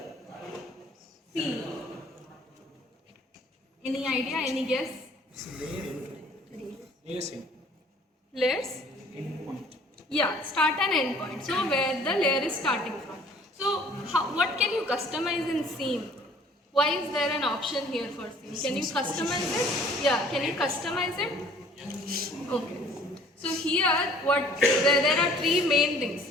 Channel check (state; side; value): normal; both; correlation 0.54